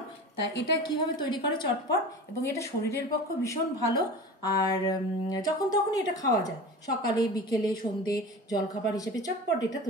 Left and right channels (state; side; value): normal; both; correlation 0.34